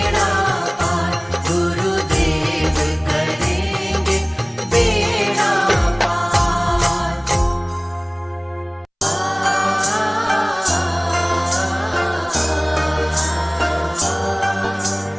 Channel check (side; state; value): both; identical; correlation 1.00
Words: पार। गुरुदेव करेंगे बेड़ा पार।